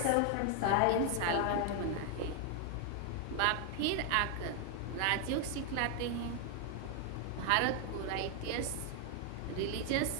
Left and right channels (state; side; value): different; both; correlation 0.00